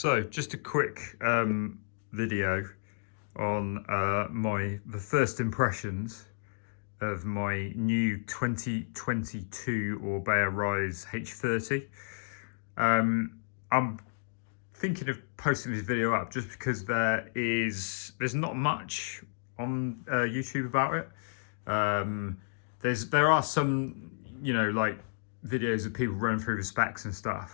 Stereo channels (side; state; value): right; silent; digital silence